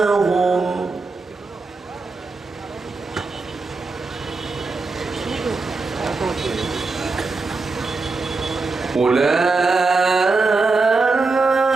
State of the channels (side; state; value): left; quieter; 3.8 dB